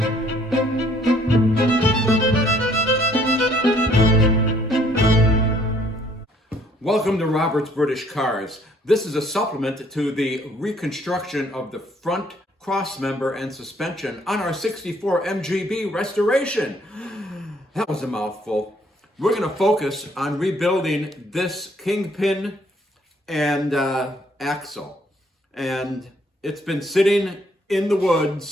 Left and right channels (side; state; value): both; normal; correlation 0.63